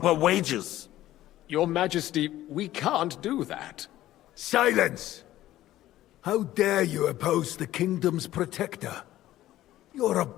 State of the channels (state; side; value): quieter; right; 14.4 dB